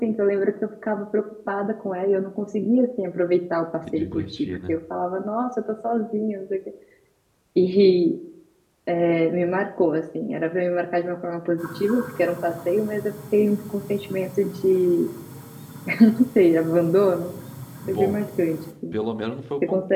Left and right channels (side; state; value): both; identical; correlation 1.00